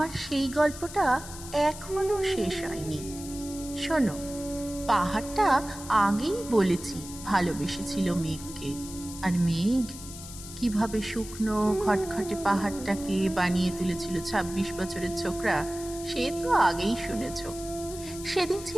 সেই গল্পটা এখনো শেষ হয়নি। শোনো, পাহাড়টা আগেই বলেছি ভালোবেসেছিল মেঘকে, আর মেঘ কিভাবে শুকনো খটখটে পাহাড়টাকে বানিয়ে তুলেছিল ২৬ বছরের ছোকরা, সে তো আগেই শুনেছ। সেদিন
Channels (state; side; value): noise; left; hiss, 13 dB below the sound